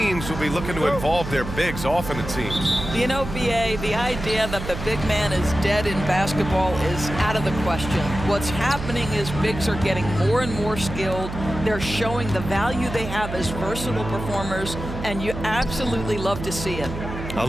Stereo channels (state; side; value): noise; right; hum, 8 dB below the sound